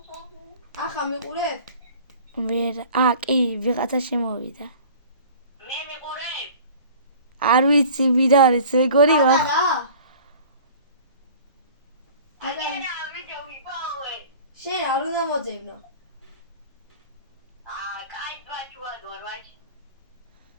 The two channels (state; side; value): inverted; both; correlation -0.45